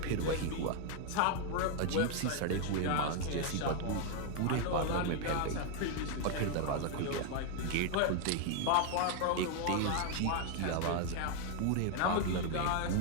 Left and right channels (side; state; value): both; different; correlation 0.00